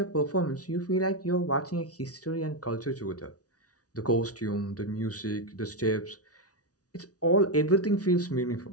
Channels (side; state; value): right; late; 0.68 ms